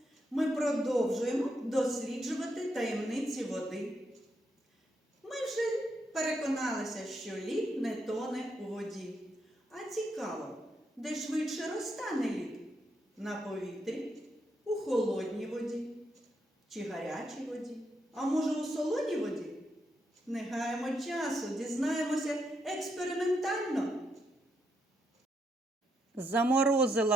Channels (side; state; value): both; normal; correlation 0.79